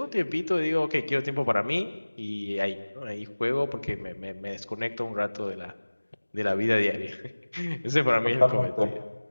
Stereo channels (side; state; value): both; inverted; correlation -1.00